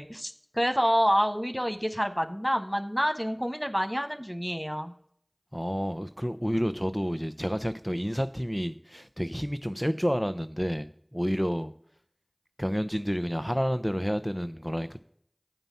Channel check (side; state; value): both; identical; correlation 1.00